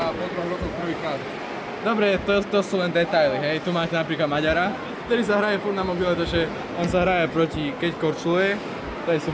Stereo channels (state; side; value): identical; both; correlation 1.00